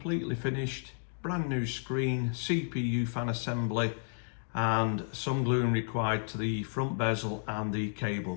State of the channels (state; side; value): silent; right; digital silence